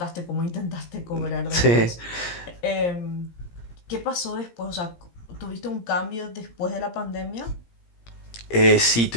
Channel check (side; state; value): right; late; 17 ms